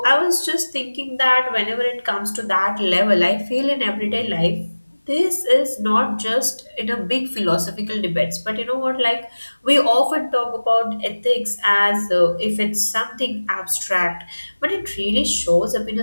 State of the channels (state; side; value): inverted; both; correlation -1.00